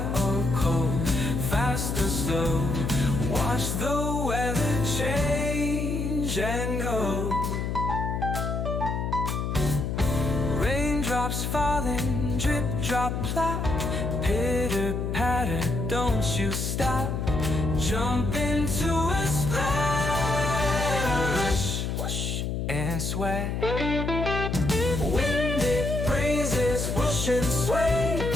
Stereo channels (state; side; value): noise; left; hum, 2 dB below the sound